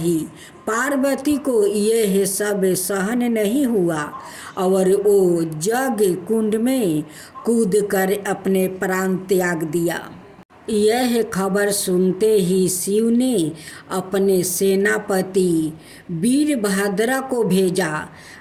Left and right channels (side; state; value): both; identical; correlation 1.00